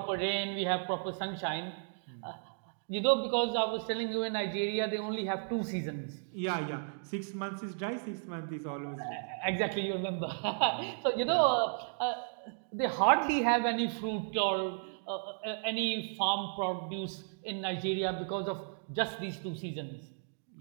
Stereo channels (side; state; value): left; silent; digital silence